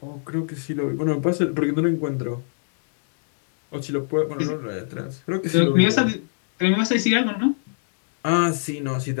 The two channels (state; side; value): silent; right; digital silence